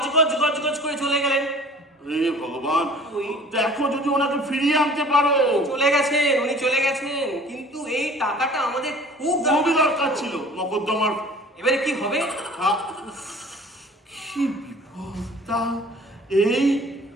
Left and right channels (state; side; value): normal; both; correlation 0.48